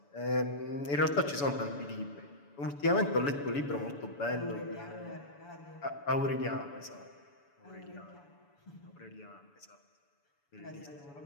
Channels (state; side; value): late; right; 7.0 ms